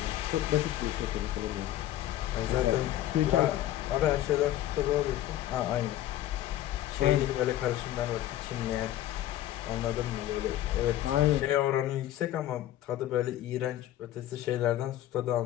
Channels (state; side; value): quieter; right; 13.3 dB